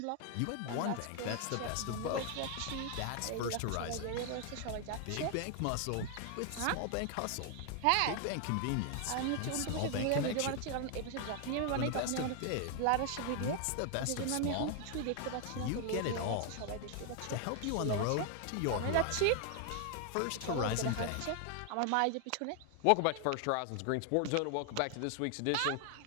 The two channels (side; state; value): both; different; correlation 0.00